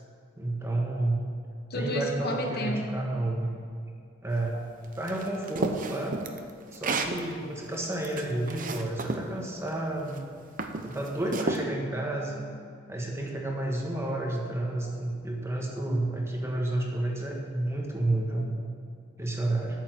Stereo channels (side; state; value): both; normal; correlation 0.72